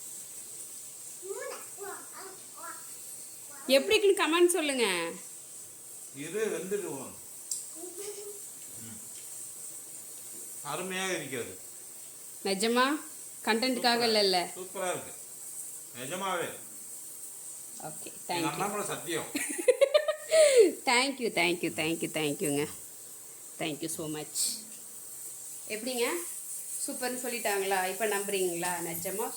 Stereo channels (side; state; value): both; identical; correlation 1.00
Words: எப்படி இருக்குன்னு கமெண்ட் சொல்லுங்க. இது வெந்துடுவோம். அருமையாக இருக்கிறது. நிஜமா கண்டென்ட்காக இல்ல. சூப்பரா இருக்கு நிஜமாவே. Okay, thank you. சத்தியம். Thank you thank you thank you thank யூங்க. Thank you so much. எப்படிங்க சூப்பர்னு சொல்லிட்டாங்களா? இப்போ நம்புறீங்களா? நிஜமாக